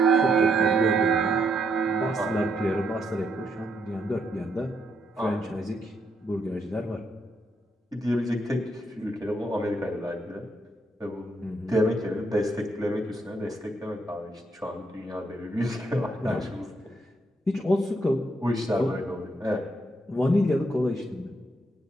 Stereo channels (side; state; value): both; normal; correlation 0.76